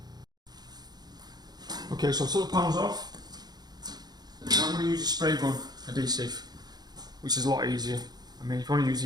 Okay, so I'll take the panels off. Now I'm going to use a spray gun adhesive, which is a lot easier. I mean, if you want to use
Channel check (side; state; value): left; late; 0.20 ms